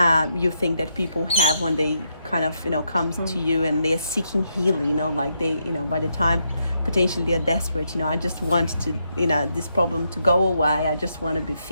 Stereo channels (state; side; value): inverted; both; correlation -0.80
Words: you think that people have when they kind of, you know, comes to you and they're seeking healing, you know, like they, you know, by the time potentially they're desperate, you know, I just want to, you know, this problem to go away, I just want to be